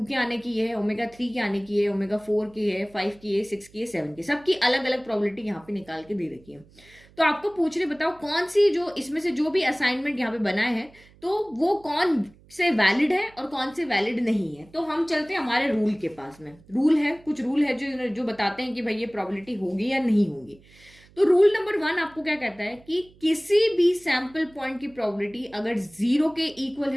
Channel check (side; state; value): right; noise; hum, 27 dB below the sound